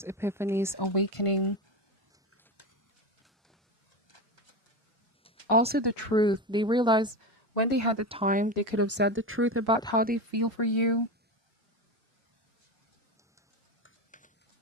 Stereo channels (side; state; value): both; normal; correlation 0.19